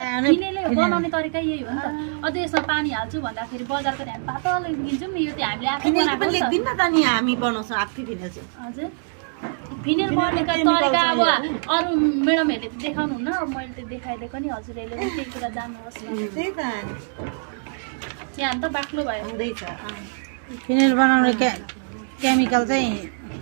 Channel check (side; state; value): left; silent; digital silence